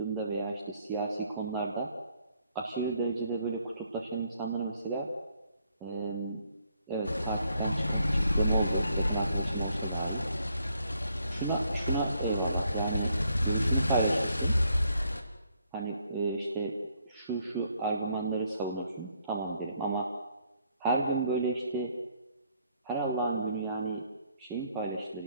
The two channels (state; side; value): inverted; both; correlation -0.70